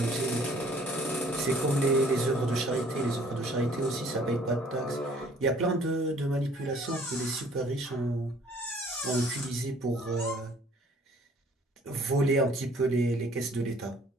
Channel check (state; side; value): normal; both; correlation 0.57